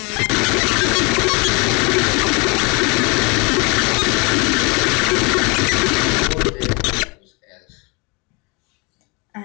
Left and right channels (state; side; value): quieter; right; 29.7 dB